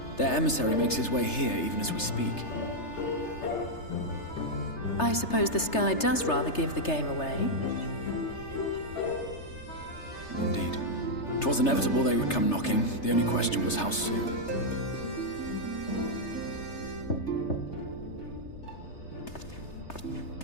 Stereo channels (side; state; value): right; late; 3.3 ms